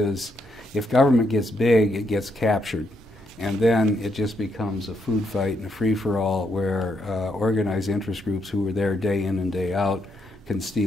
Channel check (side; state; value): both; normal; correlation 0.77